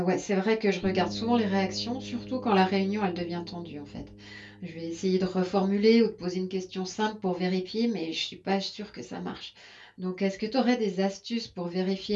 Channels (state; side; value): identical; both; correlation 1.00